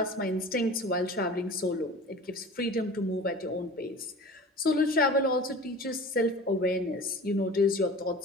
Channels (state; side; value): normal; both; correlation 0.39